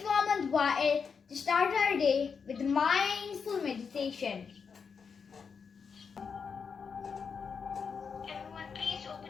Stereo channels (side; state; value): right; quieter; 6.0 dB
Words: Hamad to start our day with mindful meditation. Everyone, please